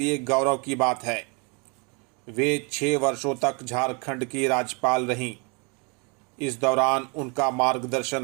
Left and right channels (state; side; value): quieter; left; 32.6 dB